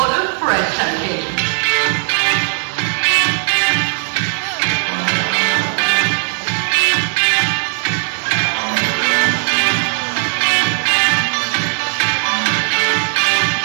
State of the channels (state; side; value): silent; left; 68 dB below the other